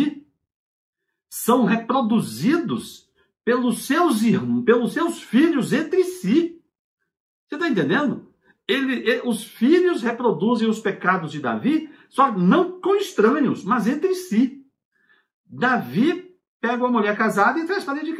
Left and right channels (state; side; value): identical; both; correlation 1.00